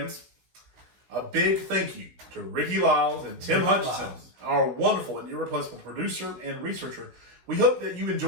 A big thank you to Rickie Liles and Tim Hutchinson, our wonderful and irreplaceable producer and researcher. We hope that you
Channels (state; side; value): late; left; 16 ms